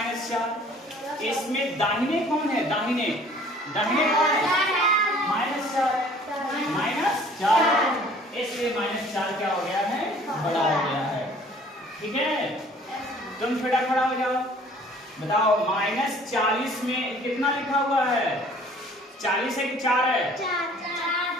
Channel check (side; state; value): both; normal; correlation 0.53